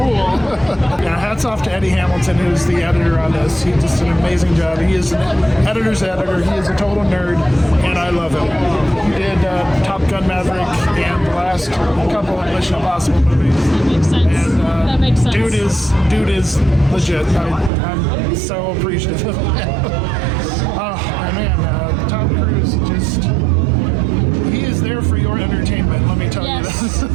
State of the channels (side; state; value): left; drops out; at 17.7 s